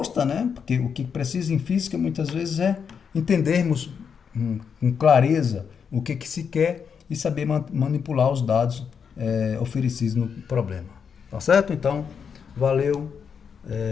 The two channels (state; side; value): quieter; right; 6.7 dB